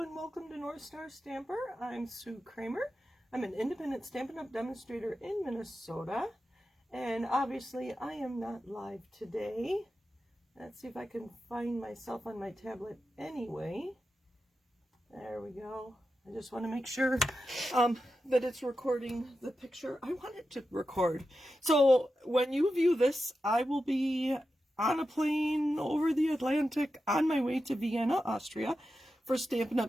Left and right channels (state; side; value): normal; both; correlation 0.90